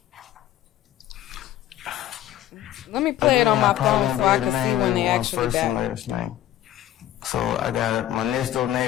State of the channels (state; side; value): quieter; right; 12.9 dB